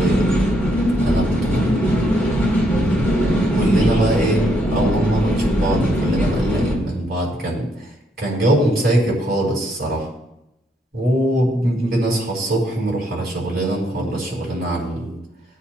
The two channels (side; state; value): both; normal; correlation 0.74